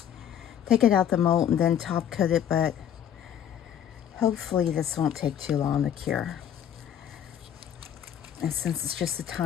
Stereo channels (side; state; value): right; quieter; 9.5 dB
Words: take it out the mold and then top coat it, but hopefully this won't take too long to cure. And since it's just a